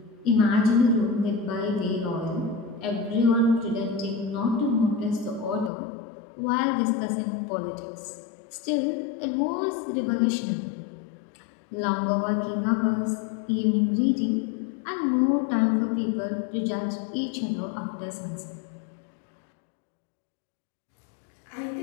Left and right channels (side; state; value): right; drops out; at 5.7 s